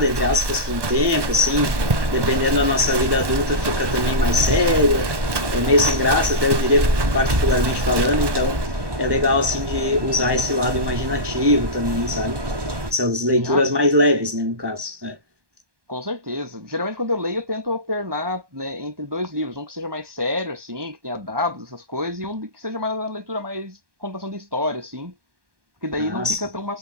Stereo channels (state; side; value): late; left; 1.1 ms